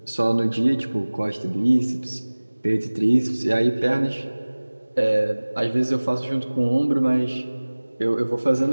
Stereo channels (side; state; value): both; inverted; correlation -1.00